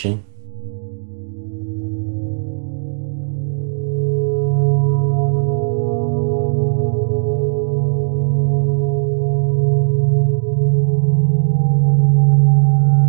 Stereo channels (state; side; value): silent; left; 68 dB below the other